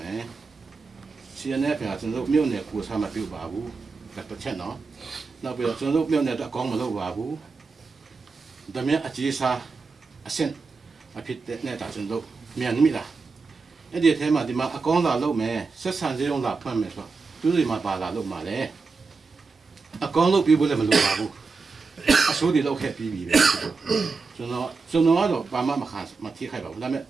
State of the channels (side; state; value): left; quieter; 4.4 dB